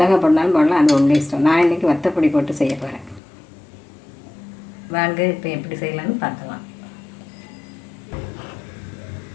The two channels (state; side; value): drops out; right; at 3.2 s